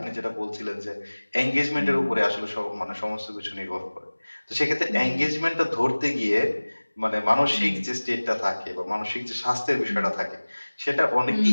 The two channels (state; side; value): inverted; both; correlation -1.00